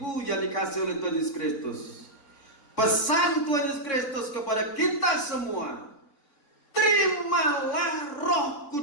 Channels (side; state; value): right; late; 3.6 ms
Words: yang dikasihi oleh Tuhan Yesus Kristus, pesan Tuhan Yesus Kristus kepada kita semua, terimalah Roh